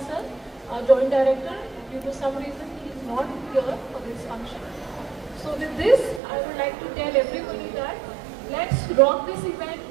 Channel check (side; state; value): left; drops out; at 6.2 s